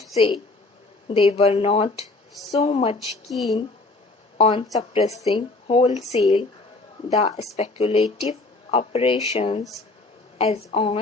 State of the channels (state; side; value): quieter; right; 3.2 dB